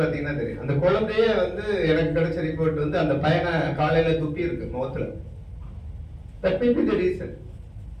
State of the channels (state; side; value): identical; both; correlation 1.00